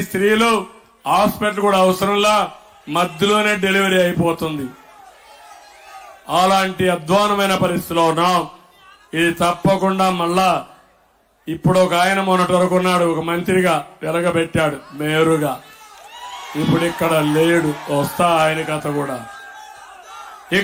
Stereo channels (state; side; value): identical; both; correlation 1.00